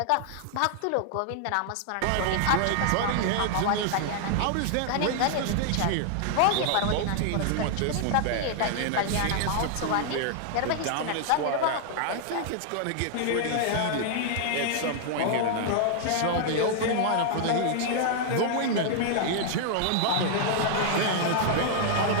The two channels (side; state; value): both; different; correlation -0.01